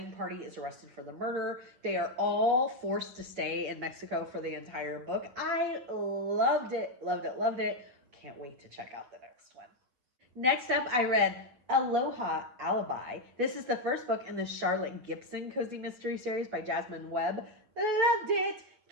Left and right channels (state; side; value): late; left; 8.3 ms